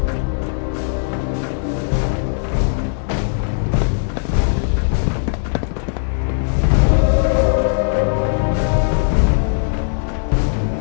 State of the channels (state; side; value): silent; right; digital silence